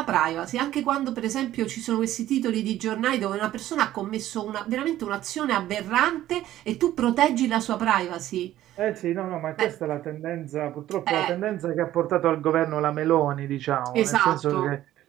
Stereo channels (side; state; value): left; quieter; 13.6 dB